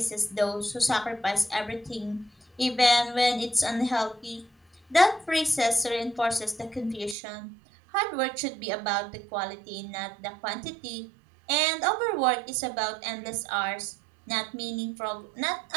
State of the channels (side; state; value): left; drops out; at 7.2 s